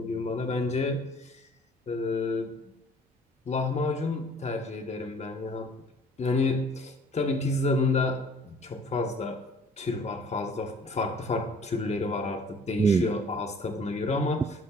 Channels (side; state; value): both; normal; correlation 0.54